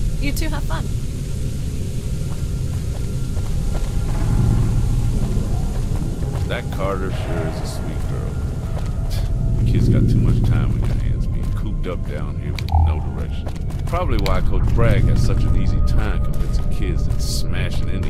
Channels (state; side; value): identical; both; correlation 1.00